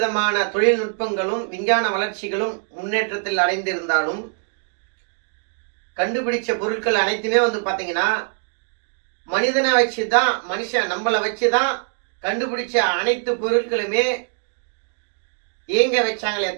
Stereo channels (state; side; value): silent; left; 57 dB below the other